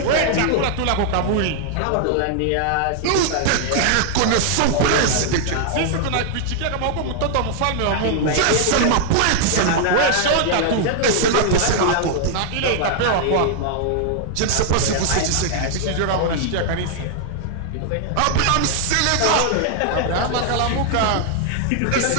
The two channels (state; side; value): different; both; correlation 0.00